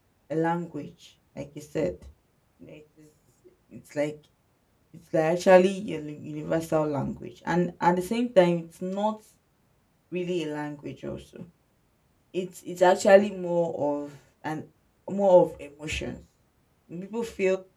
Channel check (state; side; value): identical; both; correlation 1.00